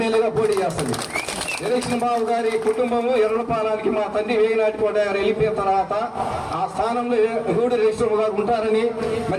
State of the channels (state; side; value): identical; both; correlation 1.00